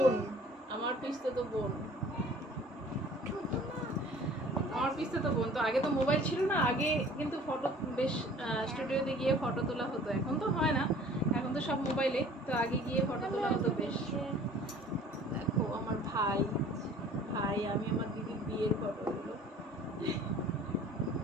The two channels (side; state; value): both; normal; correlation 0.50